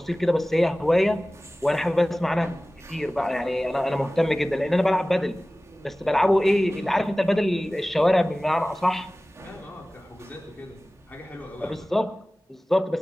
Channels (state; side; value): normal; both; correlation 0.98